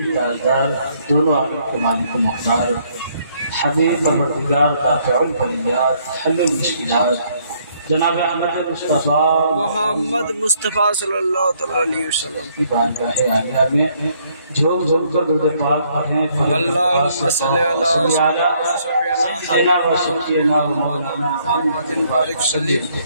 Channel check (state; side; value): inverted; both; correlation -0.68